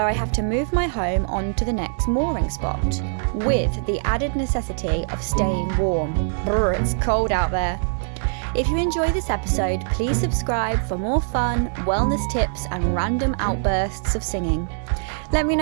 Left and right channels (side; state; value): left; silent; digital silence